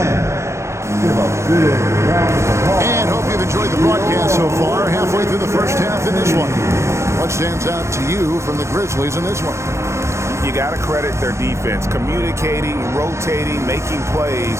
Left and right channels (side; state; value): left; late; 0.13 ms